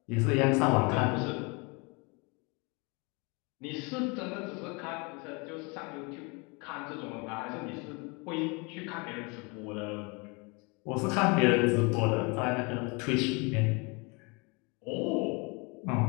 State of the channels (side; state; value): right; quieter; 29.8 dB